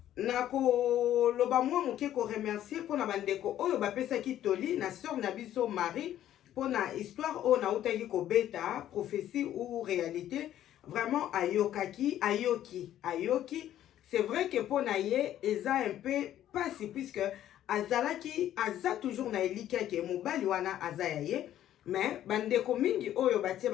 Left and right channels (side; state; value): right; quieter; 12.0 dB